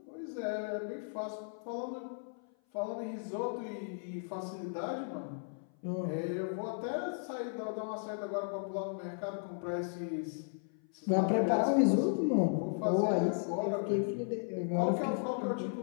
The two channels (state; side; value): silent; right; 54 dB below the other